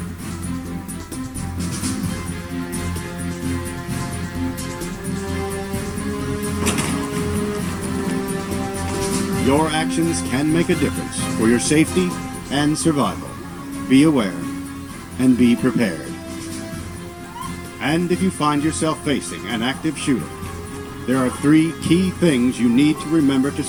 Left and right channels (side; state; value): both; identical; correlation 1.00